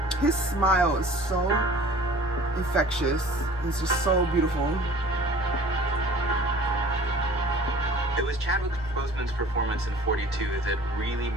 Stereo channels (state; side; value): normal; both; correlation 0.46